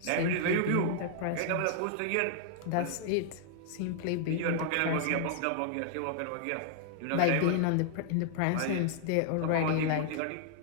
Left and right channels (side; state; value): both; different; correlation -0.01